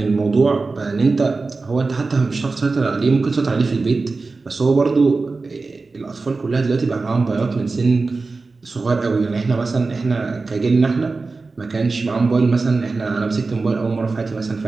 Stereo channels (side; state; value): left; quieter; 3.9 dB